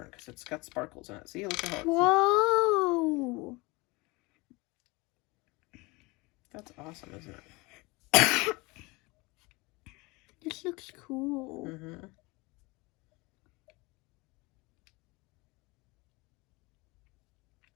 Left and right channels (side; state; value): right; quieter; 24.6 dB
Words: because it's got sparkles in it. See, look at how it's... Whoa! That's awesome, isn't it? This looks cool. Mm-hmm.